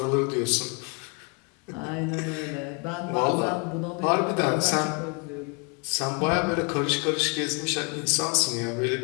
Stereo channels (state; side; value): quieter; right; 33.3 dB